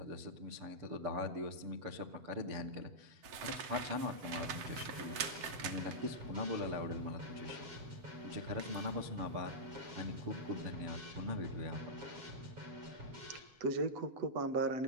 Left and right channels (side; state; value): left; late; 7.8 ms